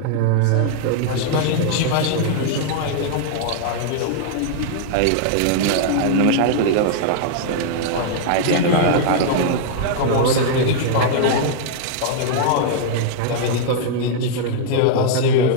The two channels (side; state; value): both; different; correlation -0.01